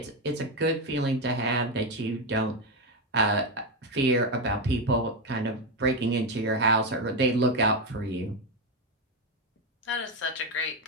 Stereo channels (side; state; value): both; normal; correlation 0.09